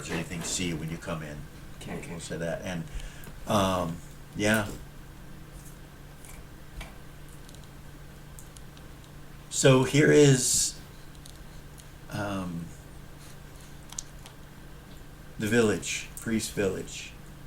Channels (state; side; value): identical; both; correlation 1.00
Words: or anything see you when you come in. Okay. We'll say that. And yeah. So here is the village, Priest Village.